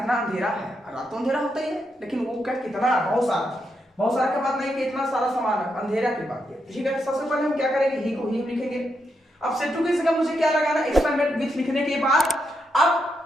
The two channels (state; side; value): normal; both; correlation 0.82